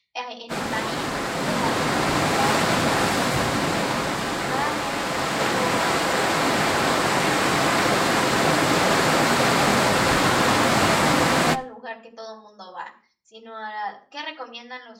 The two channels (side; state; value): both; identical; correlation 1.00